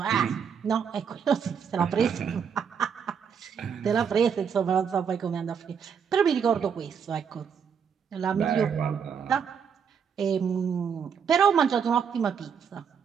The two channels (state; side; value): quieter; left; 7.0 dB